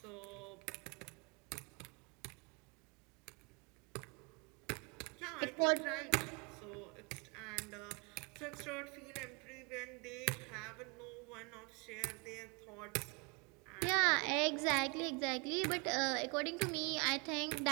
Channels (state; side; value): quieter; left; 31.3 dB